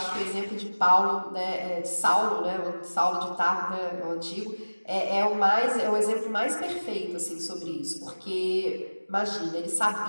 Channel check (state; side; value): inverted; both; correlation -1.00